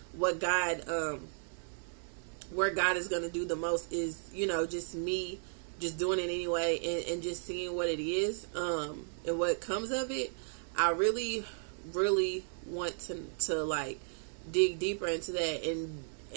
what God, where God is going to do the most is, just me just doing it anyway, and just seeing what it is, and what comes of it. I really, really want to like dig deeper into that. And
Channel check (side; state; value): left; silent; digital silence